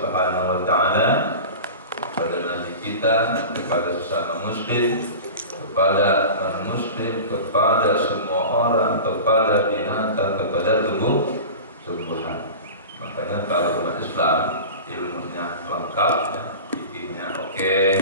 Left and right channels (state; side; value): inverted; both; correlation -0.33